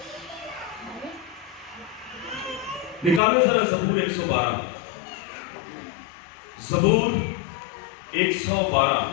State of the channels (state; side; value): drops out; right; at 3.2 s